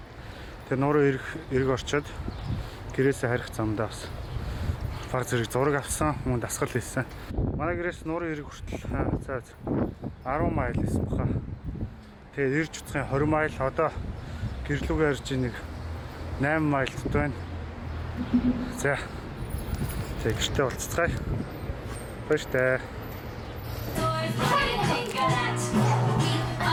нуурын эрг орчоод гэрээсээ харих замдаа бас баг зэрэг зураг авсан, мөн дасгал хийсэн. Манай гэрээс нуурын эрг хүртэл 10 майл хийсэн баха. Тэгээд ирж уцхын 20 майл, одоо гэрлүүгээ ирж нэг 8 майлт байна. За гэртээ уулзцгаая. Баяртай.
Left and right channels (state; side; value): identical; both; correlation 1.00